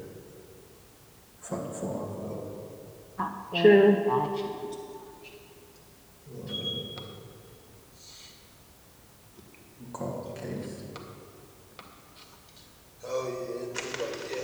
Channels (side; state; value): both; identical; correlation 1.00